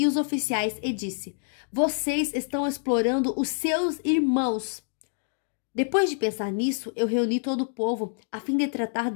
os oficiais e disse: vocês estão explorando os seus irmãos. Depois de pensar nisso, eu reuni todo o povo a fim de tratar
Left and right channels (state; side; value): silent; right; digital silence